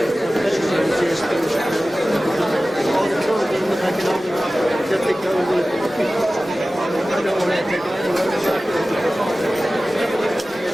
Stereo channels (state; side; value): normal; both; correlation 0.96